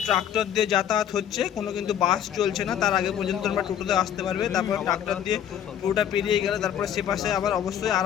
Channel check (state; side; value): quieter; right; 9.7 dB